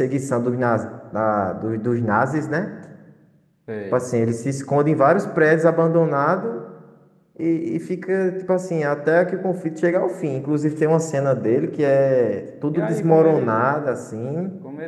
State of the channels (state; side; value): identical; both; correlation 1.00